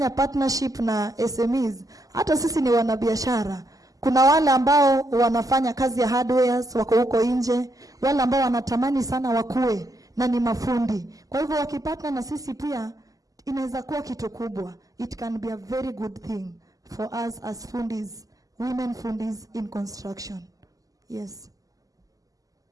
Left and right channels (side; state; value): left; late; 0.17 ms